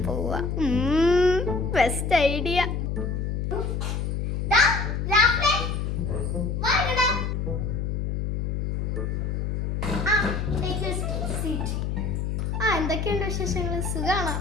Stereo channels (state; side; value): noise; left; hum, 1 dB below the sound